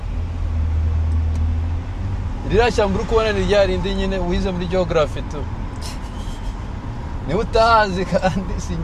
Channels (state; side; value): identical; both; correlation 1.00